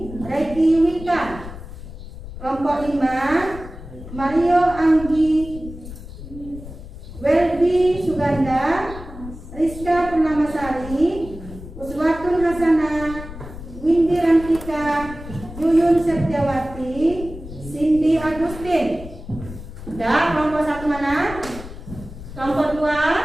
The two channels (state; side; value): noise; left; rumble, 13 dB below the sound